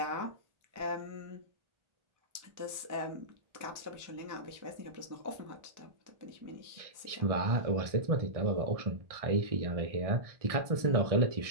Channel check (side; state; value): left; late; 1.6 ms